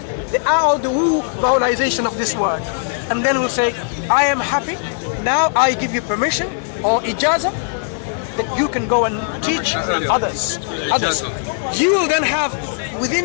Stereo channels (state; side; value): silent; right; 67 dB below the other